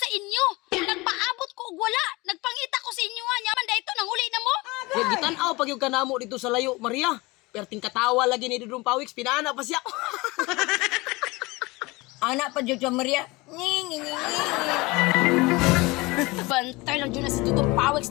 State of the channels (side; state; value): right; quieter; 23.1 dB